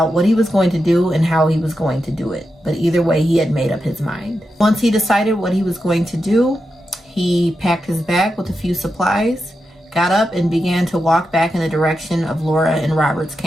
what he was going to do and how he was going to do it. But either way, he had made up his mind. Once he decided what he was going to do, he packed his bag with a few supplies, got up and began to walk back in the direction of Laura and Robert's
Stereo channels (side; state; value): both; normal; correlation 0.88